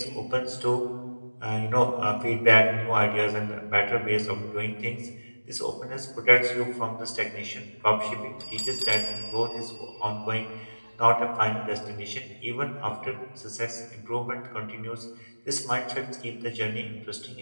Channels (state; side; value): inverted; both; correlation -1.00